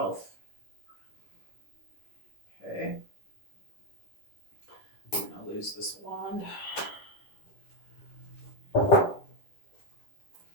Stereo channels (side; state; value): right; late; 10 ms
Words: Okay. I'm going to lose this wand. All